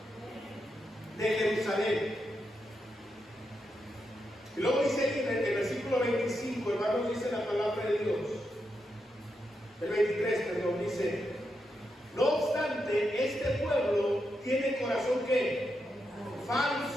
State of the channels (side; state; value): both; normal; correlation 0.84